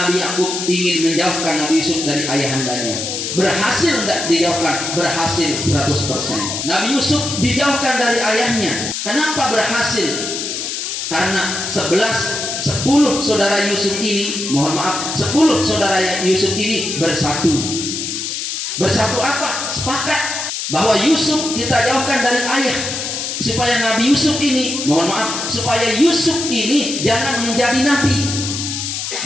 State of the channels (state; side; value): noise; left; hiss, 4 dB below the sound